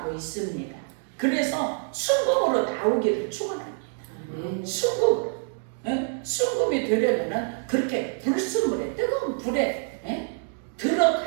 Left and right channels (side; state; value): left; silent; 61 dB below the other